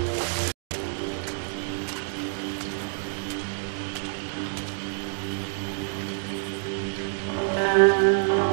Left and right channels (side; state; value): left; silent; 60 dB below the other